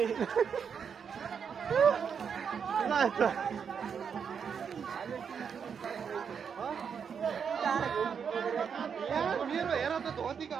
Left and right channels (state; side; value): quieter; left; 6.8 dB